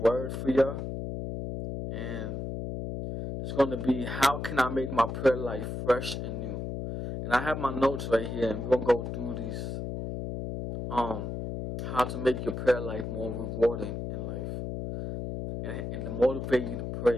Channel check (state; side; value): noise; left; hum, 5 dB below the sound